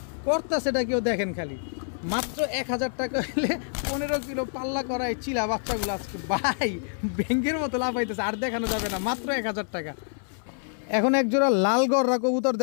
কর্তা সেটা কেউ দেখেন, খালি মাত্র 1000 টাকা হলে 15 কিলো পাল্লা করা এই চিলা বাচ্চাগুলো আজকে ভাই ব্যাংকের মতো লাভ হইতেছে, আর দেখানো যাবে না, মাত্র 1000 টাকা। এখন এক জোড়া লাল গররা কবুতর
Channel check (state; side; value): silent; right; 60 dB below the other